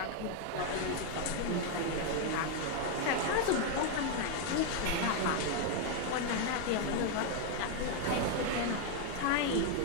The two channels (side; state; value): both; different; correlation 0.01